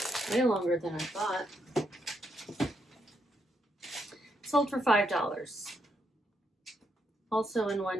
longer than I thought. Sold for $5. Also in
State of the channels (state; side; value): normal; both; correlation 0.78